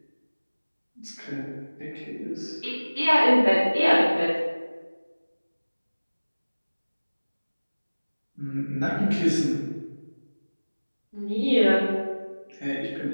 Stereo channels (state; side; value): inverted; both; correlation -1.00